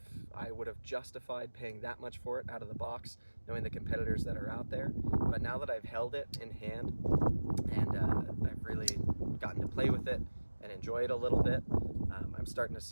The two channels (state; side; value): inverted; both; correlation -1.00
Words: I would have justified paying that much for it out of the box, knowing the competitors that are out there, but now that I've held it in hand and I've really gotten to play with it and enjoy it a little bit, I'm starting to